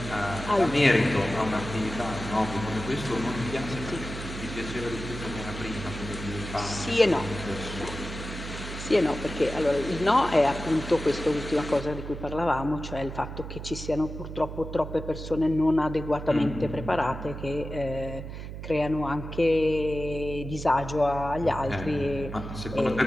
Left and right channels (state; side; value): noise; right; hum, 9 dB below the sound